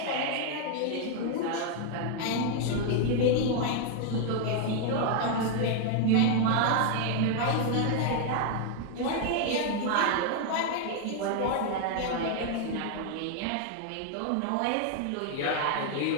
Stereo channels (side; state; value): both; different; correlation 0.00